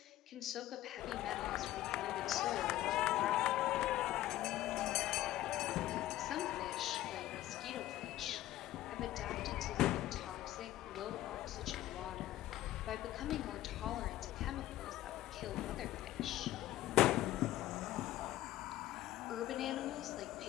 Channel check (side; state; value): right; quieter; 14.6 dB